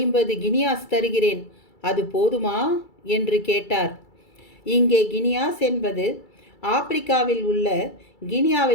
கினியாஸ் தருகிறேன். அது போதுமா என்று கேட்டார். இங்கே கினியாஸ் என்பது ஆப்பிரிக்காவில் உள்ள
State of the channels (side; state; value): right; late; 2.3 ms